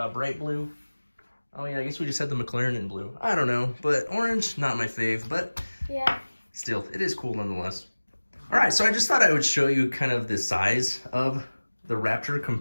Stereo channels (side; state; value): both; inverted; correlation -1.00